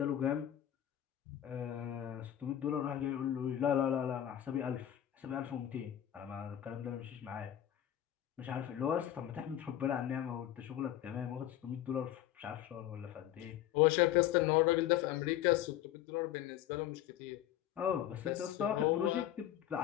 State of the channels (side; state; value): right; quieter; 11.8 dB